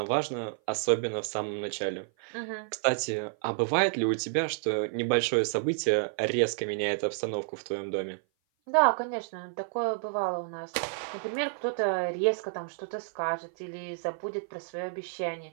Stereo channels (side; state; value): left; silent; 55 dB below the other